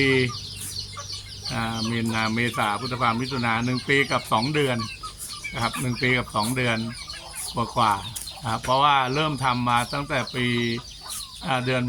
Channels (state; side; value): identical; both; correlation 1.00